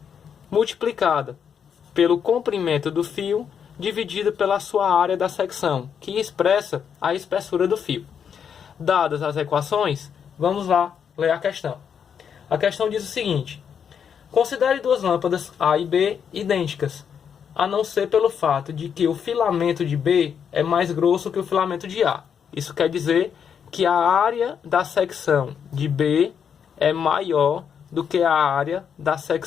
multiplicada pelo comprimento do fio dividido pela sua área da secção, que expressa a espessura do fio. Dadas as equações, vamos lá ler a questão. A questão diz o seguinte: considere duas lâmpadas A e B idênticas, a não ser pelo fato de que o filamento de B é mais grosso que o filamento de A. Isso quer dizer que a área da secção de B é maior do que a área da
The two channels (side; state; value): right; quieter; 7.6 dB